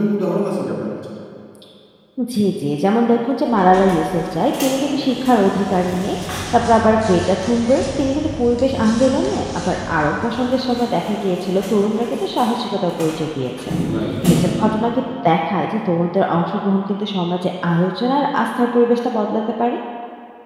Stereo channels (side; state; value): both; identical; correlation 1.00